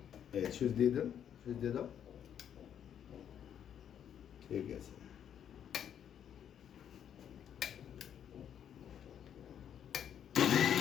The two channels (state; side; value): quieter; right; 9.2 dB